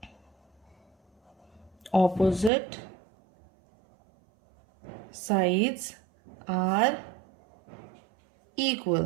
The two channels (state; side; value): drops out; left; at 2.5 s